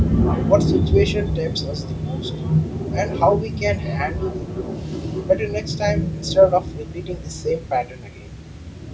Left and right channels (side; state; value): both; identical; correlation 1.00